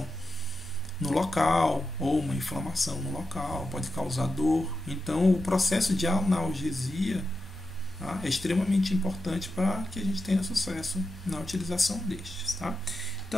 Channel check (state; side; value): normal; both; correlation 0.89